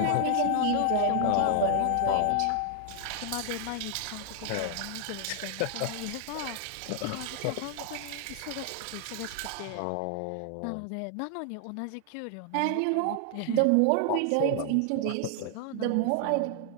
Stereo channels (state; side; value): different; both; correlation 0.00